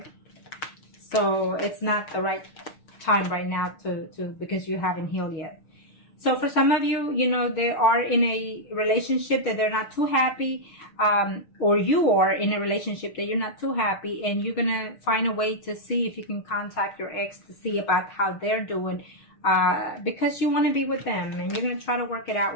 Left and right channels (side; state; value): right; late; 6.3 ms